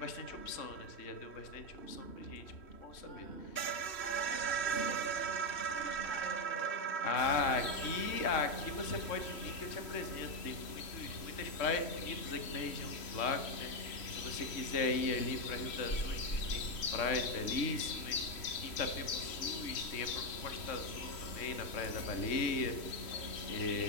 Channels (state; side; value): late; right; 3.1 ms